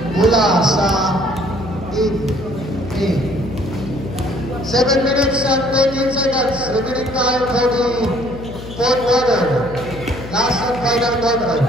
Mula sa Team A. 7 minutes and 13 seconds. Remaining time for the 4th quarter. Last and final quarter.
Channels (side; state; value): left; noise; hum, 12 dB below the sound